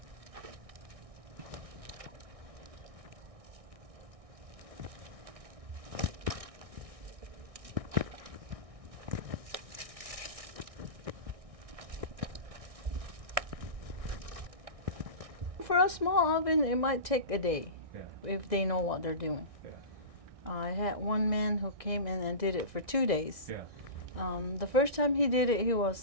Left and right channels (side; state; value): left; late; 1.6 ms